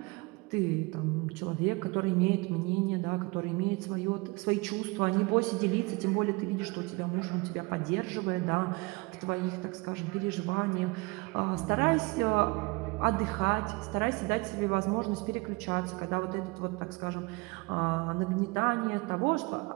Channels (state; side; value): quieter; left; 26.7 dB